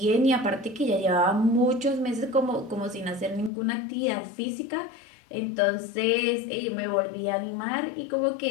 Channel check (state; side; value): drops out; right; at 3.5 s